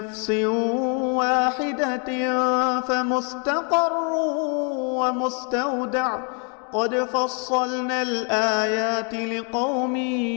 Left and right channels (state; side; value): quieter; right; 37.7 dB